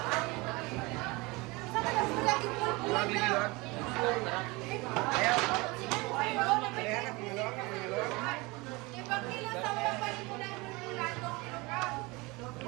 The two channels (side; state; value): left; quieter; 24.4 dB